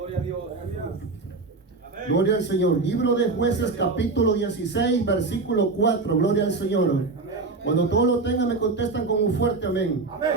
a Dios. Gloria al Señor. Libro de Jueces, capítulo 16, versículo 4. Gloria al Señor. Cuando todos lo tengan, me contestan con un fuerte amén.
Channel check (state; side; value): quieter; left; 3.8 dB